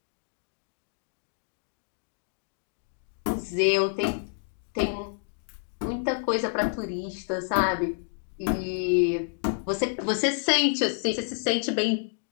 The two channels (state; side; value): silent; right; digital silence